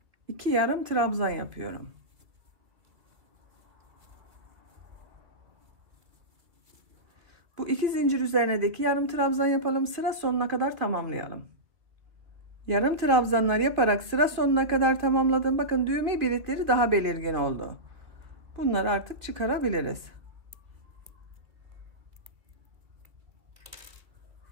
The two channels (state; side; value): late; left; 2.0 ms